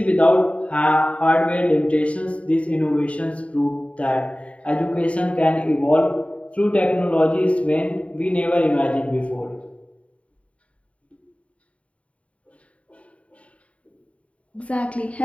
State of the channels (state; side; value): late; right; 0.064 ms